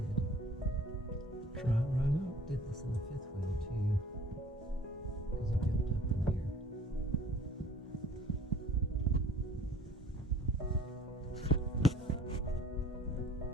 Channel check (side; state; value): both; normal; correlation 0.51